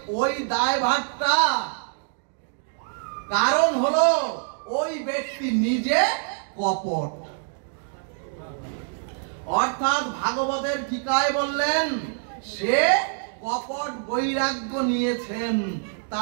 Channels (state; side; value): silent; left; digital silence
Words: ওই দায় ভারটা কারণ হলো ওই ব্যক্তি নিজে কপট। অর্থাৎ ভাগবতের টিকায় বললেন, সে কপট বৈরাগ্য নিয়েছেন,